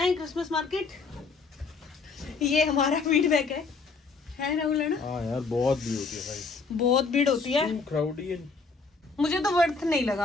क्रिसमस मार्केट, ये हमारा फीडबैक है राहुल, है ना? हाँ यार, बहुत भीड़ होती है भाई, बहुत भीड़ होती है, क्राउडी है। मुझे तो वर्थ नहीं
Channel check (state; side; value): quieter; right; 4.5 dB